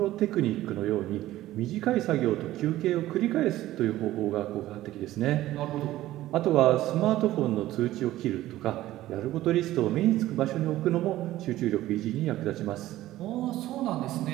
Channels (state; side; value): quieter; left; 15.2 dB